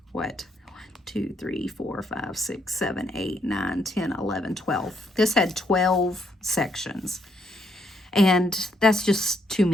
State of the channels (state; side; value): normal; both; correlation 0.74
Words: what? 2, 3, 4, 5, 6, 7, 8, 9, 10, 11, 12. This had 12 sections. And that's just too